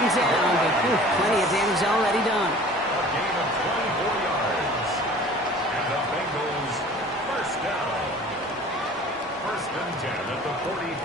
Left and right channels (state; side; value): normal; both; correlation 0.46